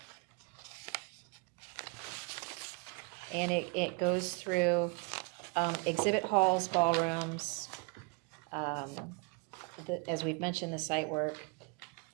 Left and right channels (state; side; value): quieter; left; 31.0 dB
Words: And it goes through exhibit halls, ballrooms, as we've mentioned, the site work,